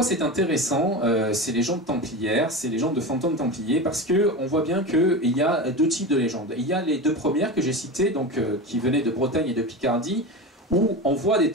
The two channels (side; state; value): both; normal; correlation 0.25